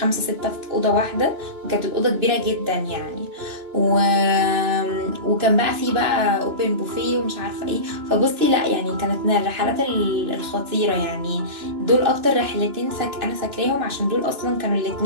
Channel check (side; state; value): left; late; 2.9 ms